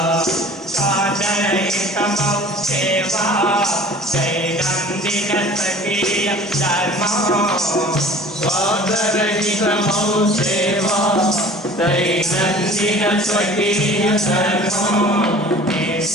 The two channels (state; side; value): normal; both; correlation 0.45